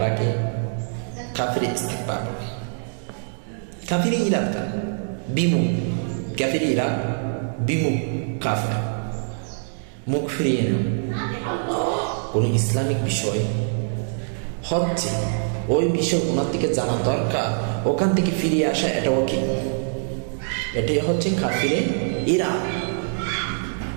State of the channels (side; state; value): left; silent; digital silence